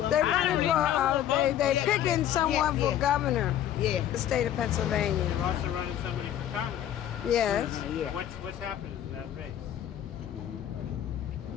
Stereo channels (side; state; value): right; quieter; 11.0 dB